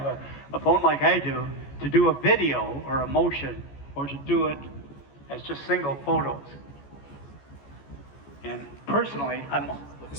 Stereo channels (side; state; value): right; late; 14 ms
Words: a phone like I to do a video or a motion, or to do it as just single photos. And personally, I'm